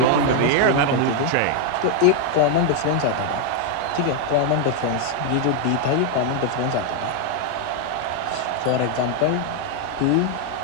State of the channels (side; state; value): both; different; correlation 0.01